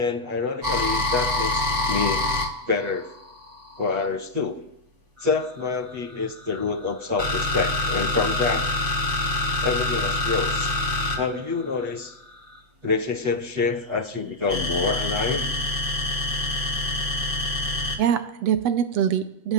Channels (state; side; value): late; left; 8.1 ms